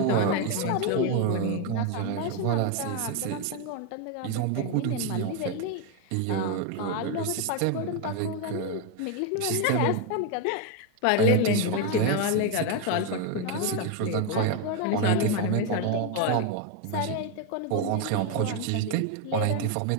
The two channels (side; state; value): both; different; correlation 0.01